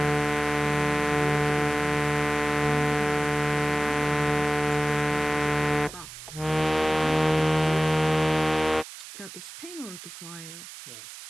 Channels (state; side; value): noise; right; hiss, 14 dB below the sound